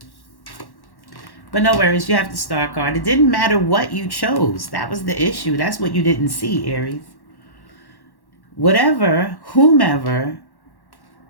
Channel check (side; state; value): right; late; 1.1 ms